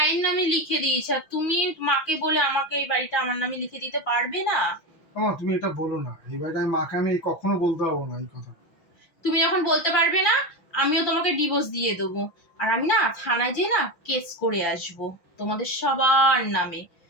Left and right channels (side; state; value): right; late; 5.8 ms